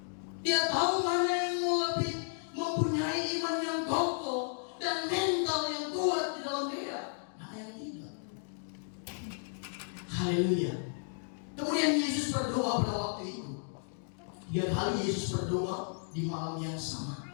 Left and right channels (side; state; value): right; silent; digital silence